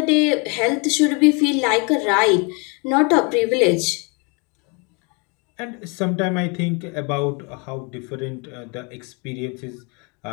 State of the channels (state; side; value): quieter; right; 32.4 dB